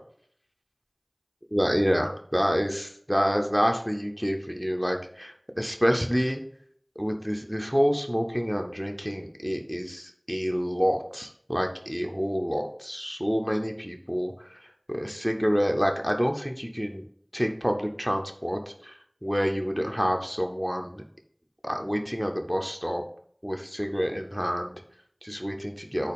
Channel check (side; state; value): both; identical; correlation 1.00